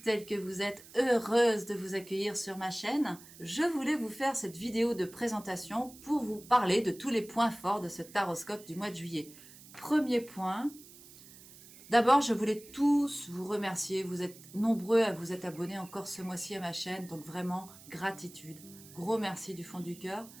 que vous êtes, heureuse de vous accueillir sur ma chaîne. Je voulais vous faire cette vidéo de présentation pour vous parler de tous les points forts de ce taroscope du mois de juillet. Premier point, d'abord je voulais tous vous remercier, vous êtes nombreux à vous être abonnés encore ce mois-ci à ma chaîne, donc vraiment gratitude, gros merci du fond du cœur,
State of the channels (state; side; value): noise; right; hiss, 20 dB below the sound